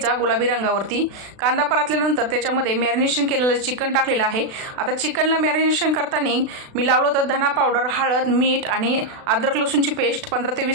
गुलाबी रंगावरती. कांदा परतल्यानंतर त्याच्यामध्ये मॅरिनेशन केलेलं चिकन टाकलेलं आहे. आता चिकनला मॅरिनेशन करताना मी लावलं होतं धना पावडर, हळद, मीठ आणि अद्रक लसूणची पेस्ट. 15 ते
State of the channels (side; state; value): left; late; 36 ms